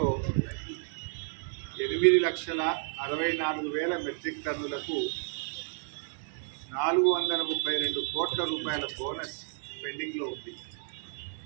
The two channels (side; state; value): left; silent; 57 dB below the other